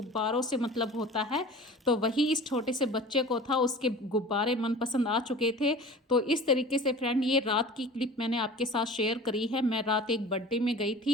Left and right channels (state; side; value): normal; both; correlation 0.40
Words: से मतलब होता है। तो वही इस छोटे से बच्चे को था, उसके गुब्बारे मनपसंद आ चुके थे। तो इस तरीके से फ्रेंड, ये रात की क्लिप मैंने आपके साथ शेयर करी है। मैं रात एक बर्थडे में गई